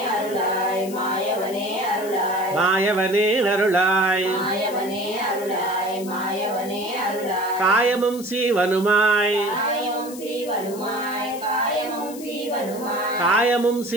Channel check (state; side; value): noise; left; hiss, 16 dB below the sound